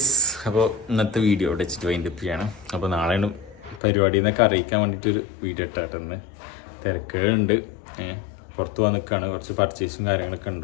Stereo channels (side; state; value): right; drops out; at 3.8 s